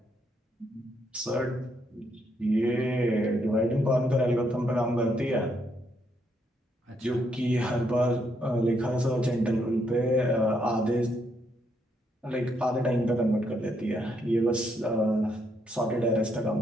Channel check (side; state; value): both; normal; correlation 0.75